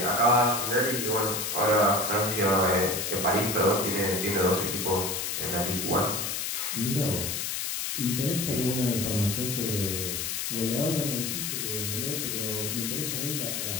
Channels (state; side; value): noise; left; hiss, 2 dB below the sound